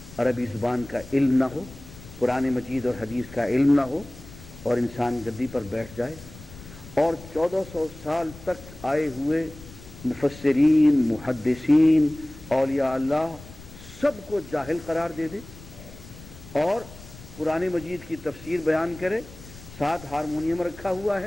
عربی زبان کا علم نہ ہو، قرآن مجید اور حدیث کا علم نہ ہو، اور انسان گدی پر بیٹھ جائے اور 1400 سال تک آئے ہوئے مفسرین، محدثین، اولیاء اللہ سب کو جاہل قرار دے دے، اور قرآن مجید کی تفسیر بیان کرے. ساتھ ہارمونیم رکھا ہوا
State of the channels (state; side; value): noise; left; rumble, 17 dB below the sound